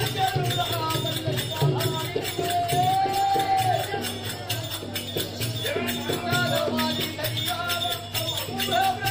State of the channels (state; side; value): identical; both; correlation 1.00